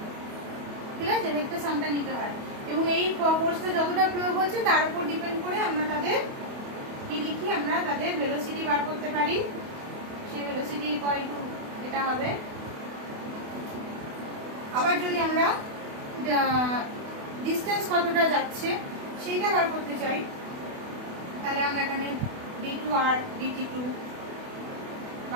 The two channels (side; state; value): left; late; 28 ms